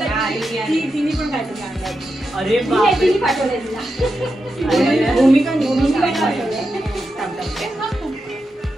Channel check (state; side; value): normal; both; correlation 0.88